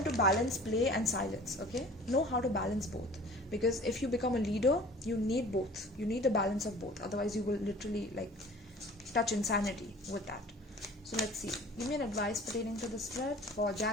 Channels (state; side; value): normal; both; correlation 0.46